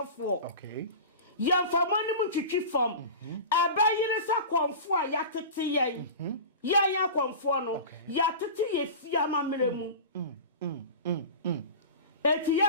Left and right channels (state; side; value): inverted; both; correlation -0.32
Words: okay yan famani mu twitwi fam abayire sa konfo a yatete yen yaya konfo no yatete ye fia mamre mu eti